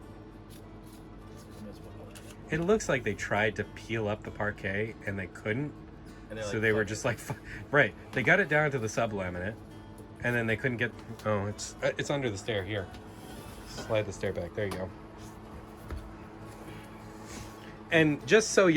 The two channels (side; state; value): both; identical; correlation 1.00